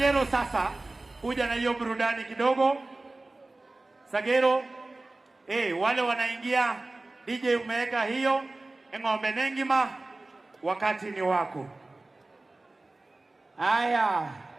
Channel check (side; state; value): left; quieter; 3.0 dB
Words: sasa kuja na hiyo burudani kidogo. Sagero, wale wanaingia, DJ umeweka hiyo, eng'ombe nengima, wakati ni wako. Aya.